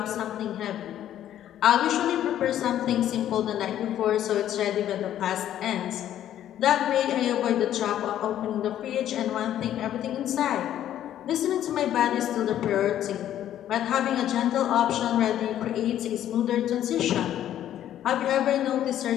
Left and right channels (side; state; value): right; quieter; 11.5 dB